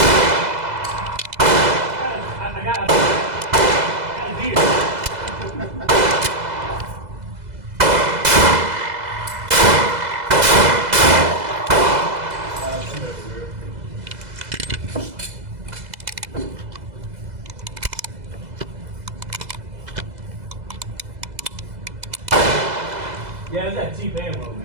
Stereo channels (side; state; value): left; late; 2.0 ms